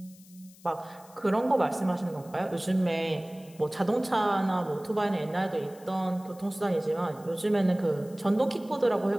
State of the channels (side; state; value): left; noise; hiss, 24 dB below the sound